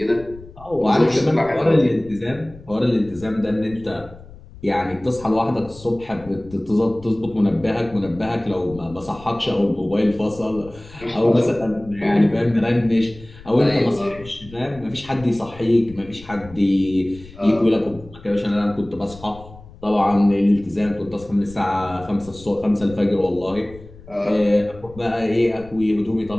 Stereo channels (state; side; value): noise; left; rumble, 19 dB below the sound